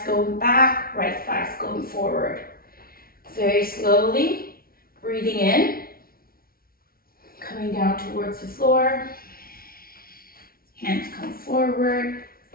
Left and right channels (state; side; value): late; right; 0.43 ms